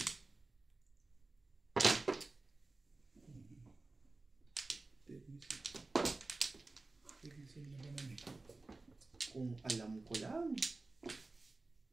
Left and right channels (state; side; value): quieter; left; 3.3 dB